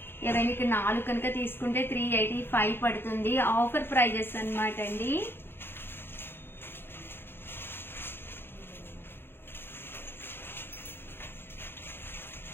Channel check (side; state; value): right; late; 0.11 ms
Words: ఎవరైనా ఇక్కడ 4 కనుక తీసుకుంటే 385 పడుతుంది. ఆఫర్ ప్రైజెస్ అనమాట అండి.